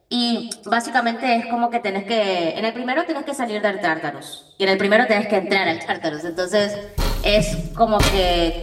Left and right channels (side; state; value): both; identical; correlation 1.00